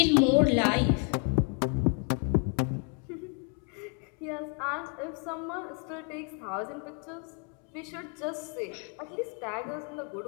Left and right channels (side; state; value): right; quieter; 38.6 dB